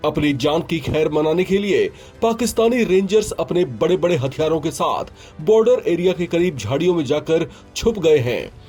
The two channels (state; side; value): identical; both; correlation 1.00